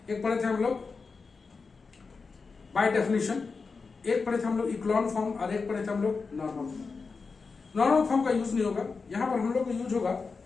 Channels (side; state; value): right; quieter; 4.6 dB